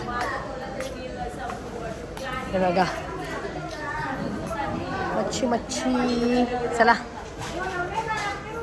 हे बघा मच्छी. चला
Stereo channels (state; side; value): identical; both; correlation 1.00